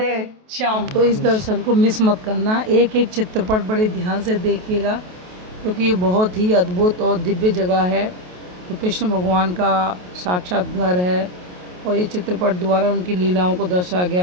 श्याम। तो इस दर्शन को मिस मत करना, एक एक चित्रपट बड़े ध्यान से देखिएगा, क्योंकि ये बहुत ही अद्भुत और दिव्य जगह है। तो कृष्ण भगवान का साक्षात घर है, और ये चित्रपट द्वारा उनकी लीलाओं को दर्शाया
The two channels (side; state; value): left; late; 28 ms